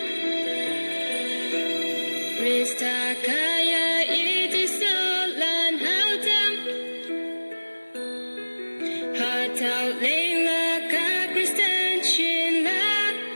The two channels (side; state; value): both; inverted; correlation -1.00